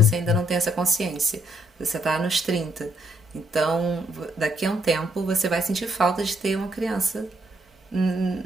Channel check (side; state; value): both; normal; correlation 0.72